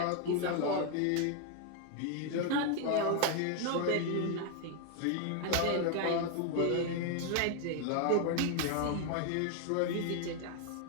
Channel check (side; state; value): both; different; correlation 0.00